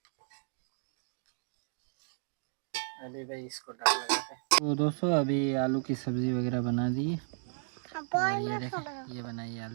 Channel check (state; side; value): silent; left; digital silence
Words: अभी भाई इसको डाल लगाते हैं। तो दोस्तों अभी आलू की सब्जी वगैरह बना दी है। और ये देखें, ये बनाई